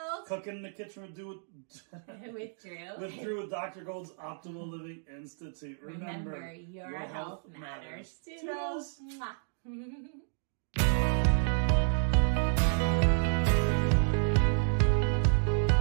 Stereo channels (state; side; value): silent; left; digital silence